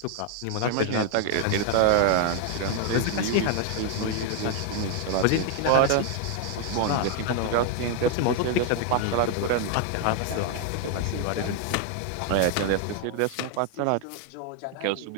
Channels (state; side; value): different; both; correlation 0.00